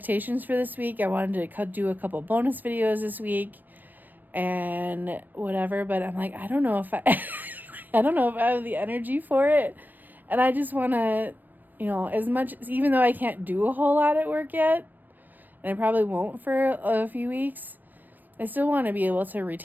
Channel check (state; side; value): late; left; 0.089 ms